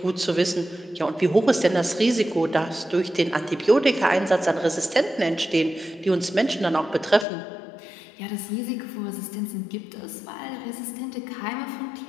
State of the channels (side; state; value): right; drops out; at 7.2 s